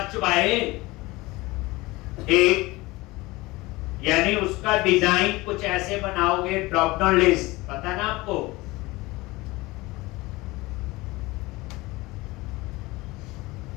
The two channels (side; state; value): right; quieter; 21.4 dB